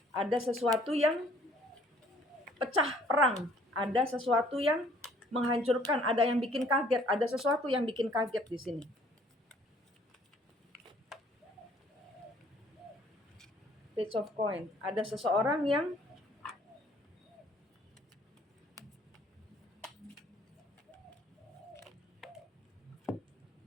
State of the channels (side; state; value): both; normal; correlation 0.59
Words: Ada sesuatu yang pecah perang. Ada sesuatu yang menghancurkan. Ada yang bikin kaget. Ada sesuatu yang bikin kaget di sini. Page of Coin. Ada seseorang yang